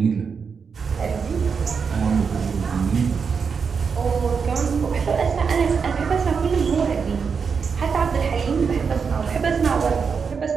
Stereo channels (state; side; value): quieter; left; 5.8 dB